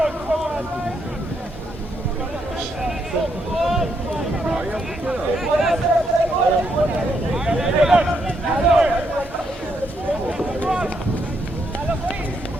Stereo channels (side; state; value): both; normal; correlation 0.77